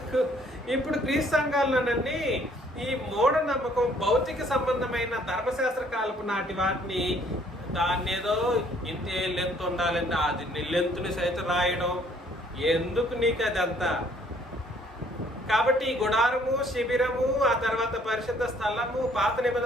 ఇప్పుడు క్రీస్తు సంఘాలన్నీ ఈ మూఢనమ్మకం, భౌతిక సంబంధమైన ధర్మశాస్త్ర కాలపు నాటి వాటిని దాన్ని ఏదో ఇంతే లెంత్ ఉండాలంటే అది లెంత్ని సైతం రాయడం ఎందుకు నీకు అదంతా? కాబట్టి ఈ గుడారము, శిబిరము, ఆ తర్వాత పరిశుద్ధ స్థలము, పాత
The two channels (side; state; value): both; normal; correlation 0.62